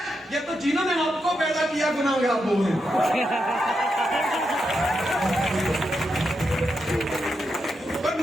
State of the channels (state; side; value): normal; both; correlation 0.84